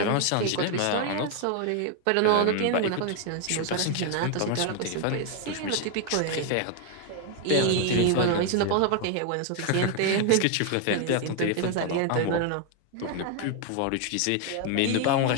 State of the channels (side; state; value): both; different; correlation 0.00